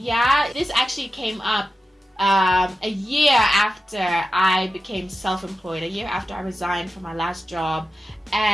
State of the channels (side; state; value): both; normal; correlation 0.92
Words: This actually came up a year after I became self-employed, a year after I resigned from my last job.